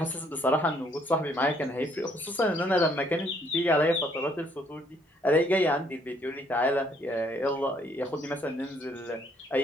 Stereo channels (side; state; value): both; normal; correlation 0.66